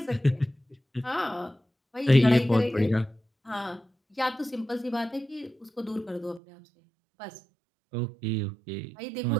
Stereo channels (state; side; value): drops out; left; at 6.4 s